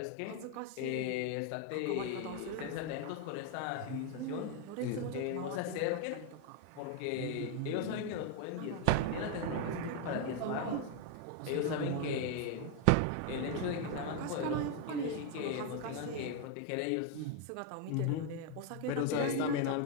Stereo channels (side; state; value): both; different; correlation 0.01